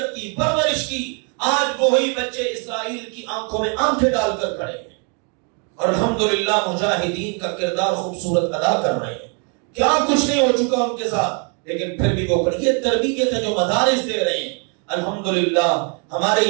کی، پرورش کی، آج وہی بچے اسرائیل کی آنکھوں میں آنکھیں ڈال کر کھڑے ہیں اور الحمدللہ مجاہدین کا کردار خوبصورت ادا کر رہے ہیں۔ کیا کچھ نہیں ہو چکا ان کے ساتھ، لیکن پھر بھی وہ یہ تربیت ہے جو مدارس دے رہے ہیں۔ الحمدللہ ہمارے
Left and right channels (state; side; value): quieter; left; 36.1 dB